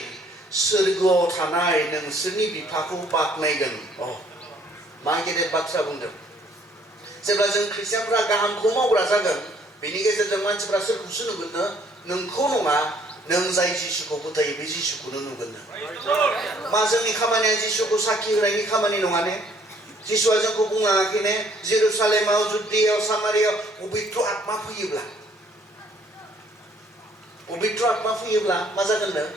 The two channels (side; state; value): both; normal; correlation 0.62